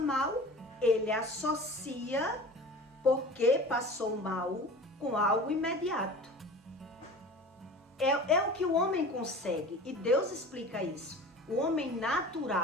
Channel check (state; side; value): normal; both; correlation 0.38